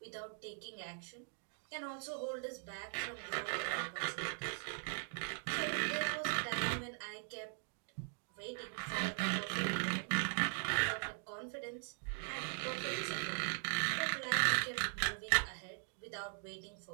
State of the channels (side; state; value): left; silent; 51 dB below the other